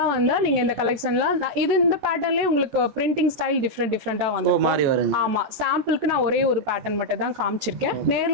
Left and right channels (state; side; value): late; left; 14 ms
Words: வந்தா நீங்க இந்த கலெக்ஷன்ல இது இந்த பேட்டர்ன்லயே உங்களுக்கு பிரிண்டிங் ஸ்டைல் டிஃபரெண்டா வந்து. ஆமா, சாம்பிளுக்கு நான் ஒரே ஒரு பேட்டர்ன் மட்டும் தான் காமிச்சிருக்கேன்.